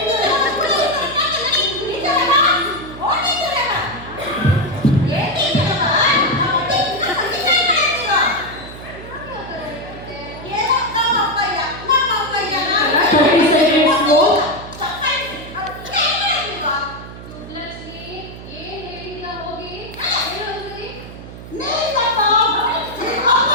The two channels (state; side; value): noise; right; hum, 14 dB below the sound